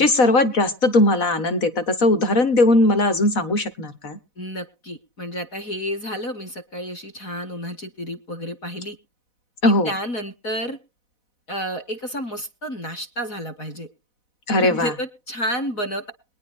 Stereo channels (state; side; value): late; right; 4.1 ms